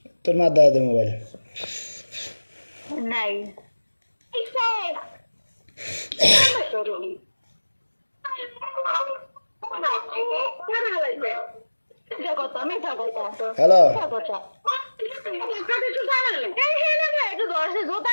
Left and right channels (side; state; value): both; inverted; correlation -1.00